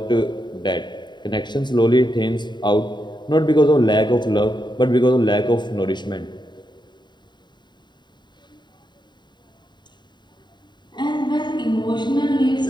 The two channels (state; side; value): late; right; 0.22 ms